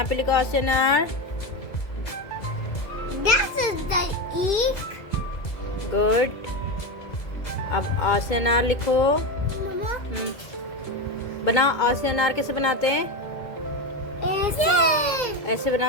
लिखो आ से अनार। गुड। अब आ से अनार लिखो। बना, आ से अनार कैसे बनाते हैं? ऐसे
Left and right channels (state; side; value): late; right; 2.0 ms